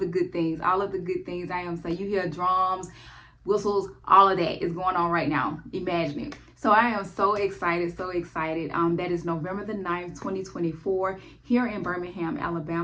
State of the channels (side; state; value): both; identical; correlation 1.00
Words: good things. I am saying, you hear drums, whistles, all of that is going on right now. Imagine it. So I am so excited. That is November the 9th, 2024, here in Birmingham,